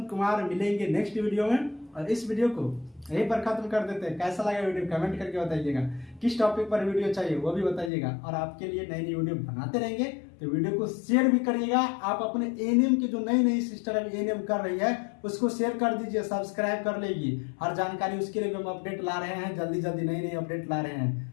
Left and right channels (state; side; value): drops out; right; at 7.9 s